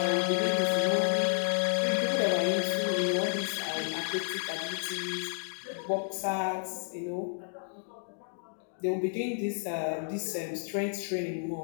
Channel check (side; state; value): right; silent; digital silence